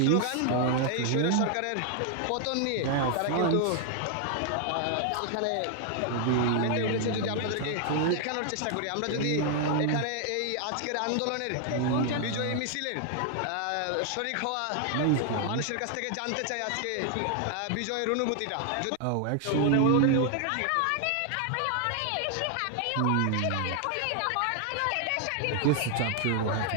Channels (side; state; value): both; different; correlation 0.00